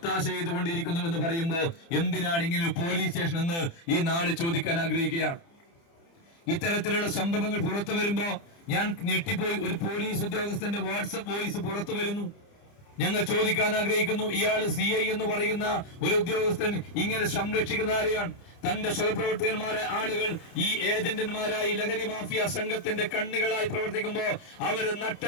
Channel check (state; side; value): late; right; 30 ms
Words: ചെയ്തുകൊണ്ടിരിക്കുന്നു എന്ന് പറയുമ്പോൾ എന്തിനാണ് ഇങ്ങനെ പോലീസ് സ്റ്റേഷൻ എന്ന് ഈ നാട് ചോദിക്കാൻ ആഗ്രഹിക്കുകയാണ്. ഇത്തരത്തിലുള്ള സംഭവങ്ങൾ പുറത്തു വരുമ്പോ ഞാൻ ഞെട്ടിപ്പോയി. ഒരു പോലീസ് ഉദ്യോഗസ്ഥന്റെ വാട്സപ്പ് വോയിസ് പുറത്തു വരുന്നു. ഞങ്ങൾ ചോദിക്കാൻ ആഗ്രഹിക്കുന്നു, ഇയാൾ CI എന്ന് പറയുന്ന ഒരു ഉദ്യോഗസ്ഥൻ ഇങ്ങനെ സംരക്ഷിക്കുന്ന ആരെയാണ്? തന്റെ സഹപ്രവർത്തകന്മാരെ ആളുകൾ ഈ ഏജന്റന്മാരായി ലഹരി മാഫിയ സംഘത്തിന്റെ കണ്ണികളായി പ്രവർത്തിക്കുമ്പോൾ അവര്